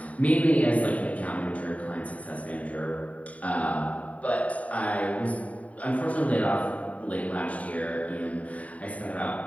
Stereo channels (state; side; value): late; right; 0.068 ms